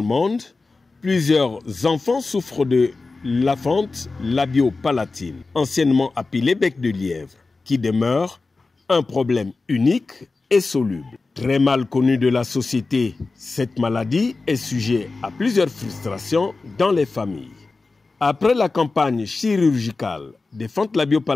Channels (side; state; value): right; quieter; 3.7 dB